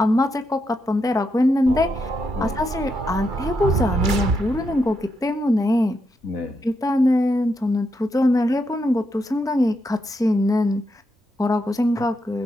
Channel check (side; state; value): both; normal; correlation 0.82